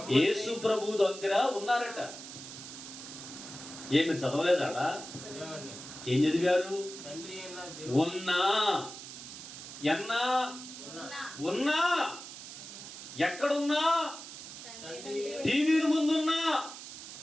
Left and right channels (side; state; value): right; noise; hiss, 12 dB below the sound